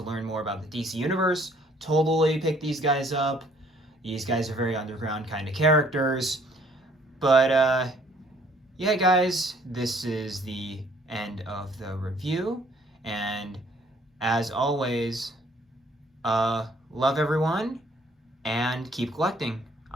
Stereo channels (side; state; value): both; normal; correlation 0.61